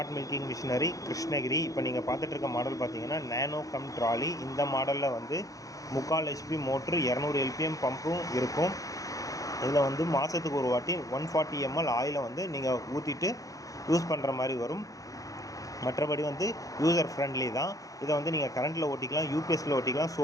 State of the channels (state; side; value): late; right; 0.17 ms